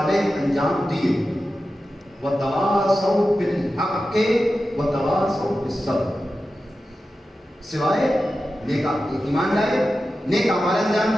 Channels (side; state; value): both; normal; correlation 0.92